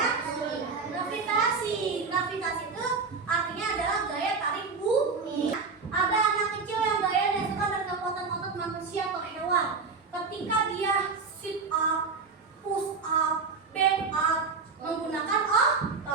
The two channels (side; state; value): left; quieter; 4.7 dB